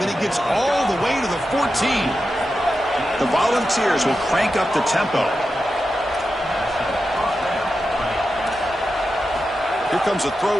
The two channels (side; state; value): both; normal; correlation 0.90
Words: he gets all the way to the 14. The Volunteers will crank up the tempo. Here comes a